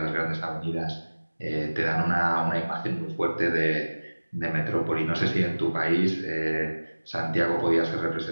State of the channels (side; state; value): both; inverted; correlation -1.00